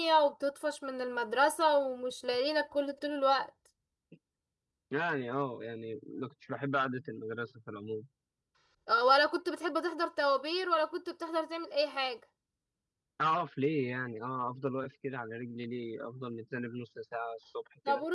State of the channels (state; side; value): identical; both; correlation 1.00